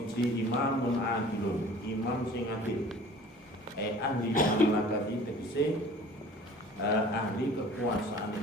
imamun adilun imam sing adil ahli mamlakati tegese ahli kekuasaan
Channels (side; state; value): both; normal; correlation 0.47